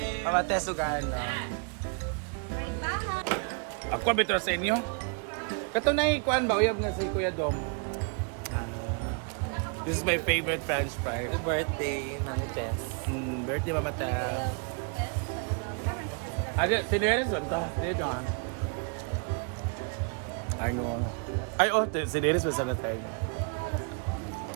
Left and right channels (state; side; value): quieter; left; 37.6 dB